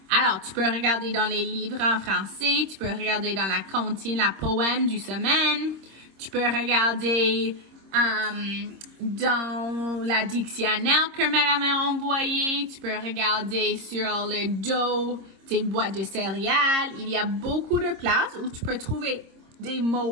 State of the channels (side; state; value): left; late; 26 ms